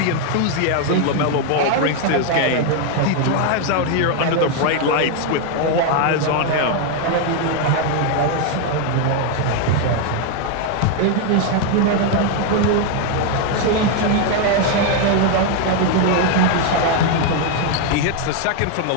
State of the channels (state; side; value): different; both; correlation 0.01